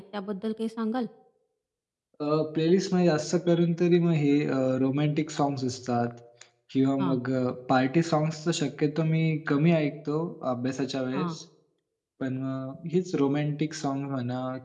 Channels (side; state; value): both; identical; correlation 1.00